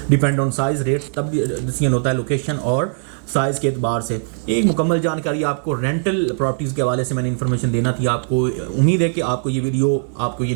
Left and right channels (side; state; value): left; silent; 66 dB below the other